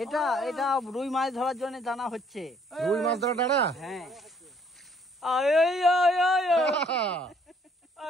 এটা এটা রুই মাছ ধরার জন্য টানা হচ্ছে। রুই মাছ ধরা ডালা? হ্যাঁ।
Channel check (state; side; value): normal; both; correlation 0.63